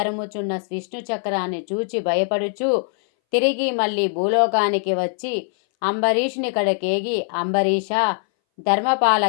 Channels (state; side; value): silent; right; 62 dB below the other